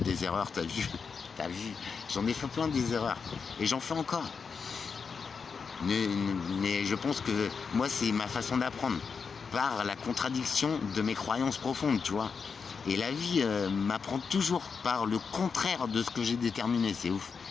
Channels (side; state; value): right; quieter; 5.6 dB